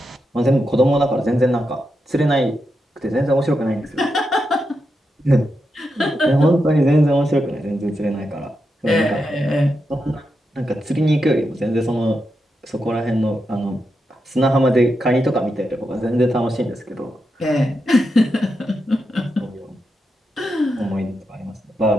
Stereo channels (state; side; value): normal; both; correlation 0.86